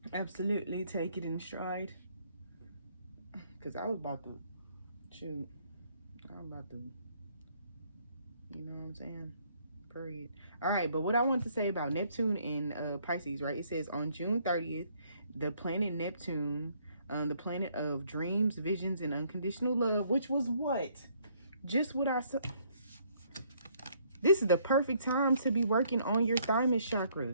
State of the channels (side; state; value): both; inverted; correlation -0.66